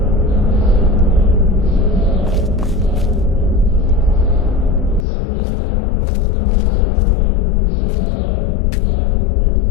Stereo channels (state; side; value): drops out; right; at 5.1 s